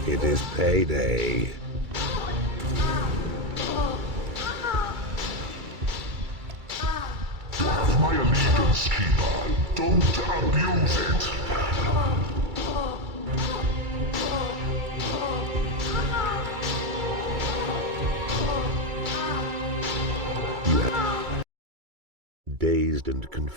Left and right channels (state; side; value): late; left; 2.3 ms